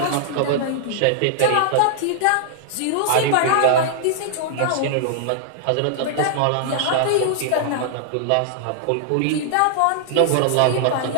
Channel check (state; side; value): different; both; correlation -0.01